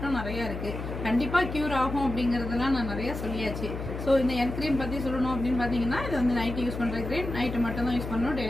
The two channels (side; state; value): left; noise; hum, 6 dB below the sound